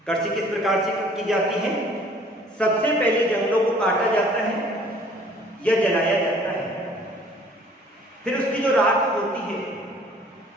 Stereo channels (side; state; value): both; normal; correlation 0.54